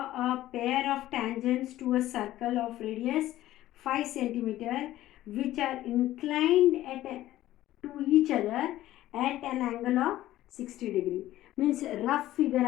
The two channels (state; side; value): quieter; right; 14.6 dB